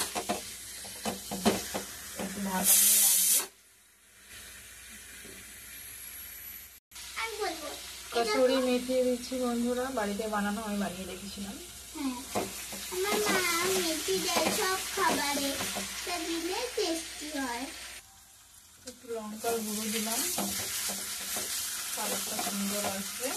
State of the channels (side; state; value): both; identical; correlation 1.00